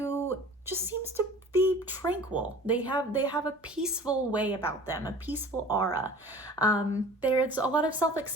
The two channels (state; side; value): normal; both; correlation 0.43